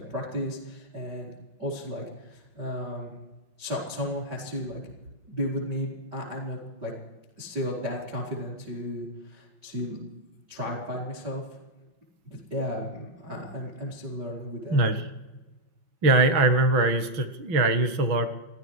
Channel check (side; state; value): left; late; 6.1 ms